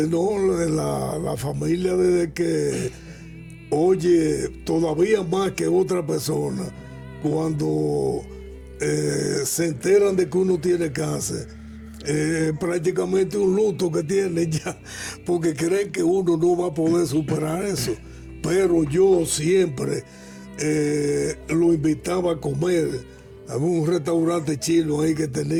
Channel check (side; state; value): both; identical; correlation 1.00